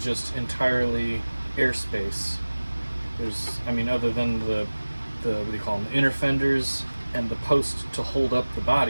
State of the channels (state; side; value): inverted; both; correlation -1.00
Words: entirely airspace. I mean, other than the what do you call them, the inner fenders and the post to hold up the